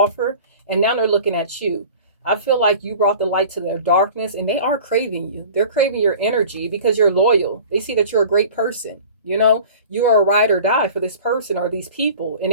And now they're looking at you. I feel like you brought the light to their darkness, and they are craving you. They're craving your energy because you're loyal. They see that you're a great person. You know, you are a ride or die for this person or these people, and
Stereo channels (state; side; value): inverted; both; correlation -0.42